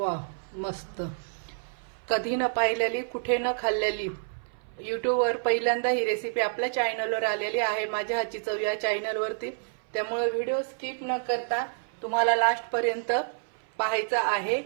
मस्त. कधी न पाहिलेली, कुठे न खाल्लेली, यूट्यूबवर पहिल्यांदा ही रेसिपी आपल्या चॅनलवर आलेली आहे, माझ्या हातची चव या चॅनलवरती. त्यामुळे व्हिडिओ स्किप न करता तुम्हाला लास्टपर्यंत पाहायचा आहे.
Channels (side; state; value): left; silent; 58 dB below the other